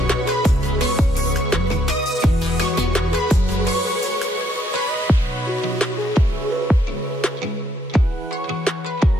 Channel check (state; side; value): normal; both; correlation 0.70